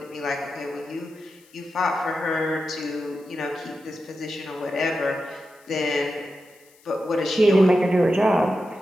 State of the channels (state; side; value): noise; left; hiss, 29 dB below the sound